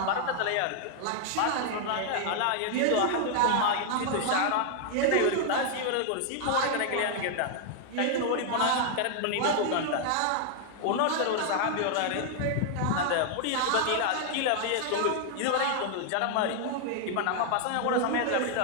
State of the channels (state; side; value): different; both; correlation 0.00